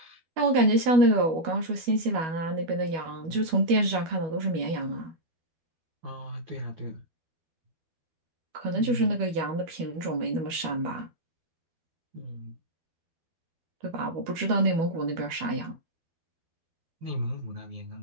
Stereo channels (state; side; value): late; left; 12 ms